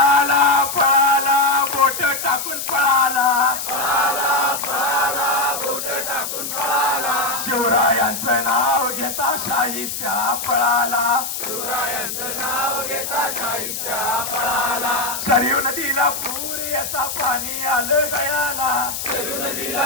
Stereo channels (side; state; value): left; noise; hiss, 5 dB below the sound